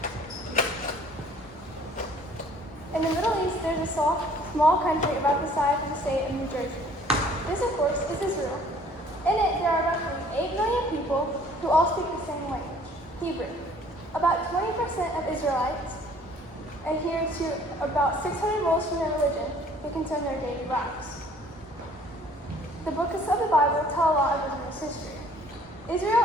In the Middle East, there's a small country about the size of the state of New Jersey. This, of course, is Israel. In it, there are roughly 8 million people who all speak the same language, Hebrew. About 20% of Israelites adhere to about 600 rules from their religion who concern their daily lives. The books of the Bible tell a lot of Israel's history.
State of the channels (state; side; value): normal; both; correlation 0.55